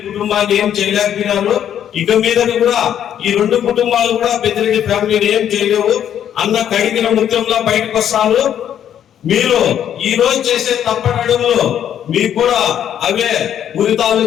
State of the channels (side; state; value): right; quieter; 9.9 dB